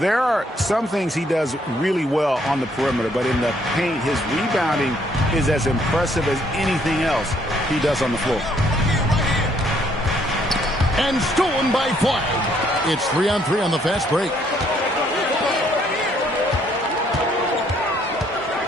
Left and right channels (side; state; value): both; normal; correlation 0.67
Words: are some things he does really well on the perimeter, but in the paint, his rebounding is as impressive as anything else he does on the floor. And stolen by Flag. It's 3-on-3 on the fast break.